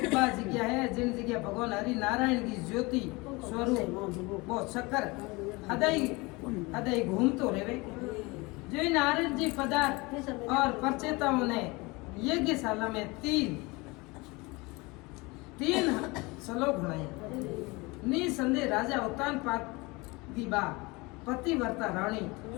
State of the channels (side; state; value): right; quieter; 24.7 dB